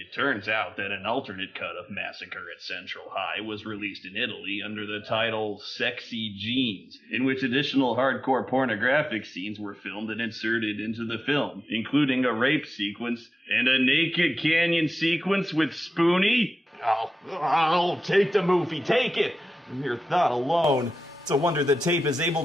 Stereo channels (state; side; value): normal; both; correlation 0.94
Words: turns out that an alternate cut of Massacre at Central High was released in Italy under the title Sexy Genes, in which additional hardcore pornographic scenes were filmed and inserted into the film, including a rape sequence and a naked canyon sequence with Spoonie. I'll take the movie, take it! Your thought alone. It's a wonder the tape is able